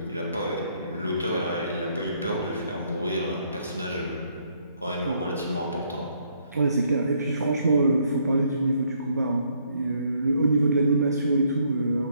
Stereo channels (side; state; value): both; inverted; correlation -0.69